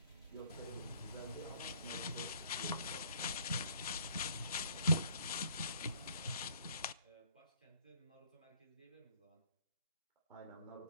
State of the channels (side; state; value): both; inverted; correlation -0.61